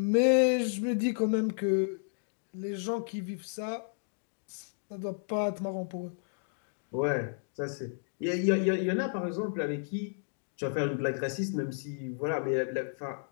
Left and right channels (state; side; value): silent; right; digital silence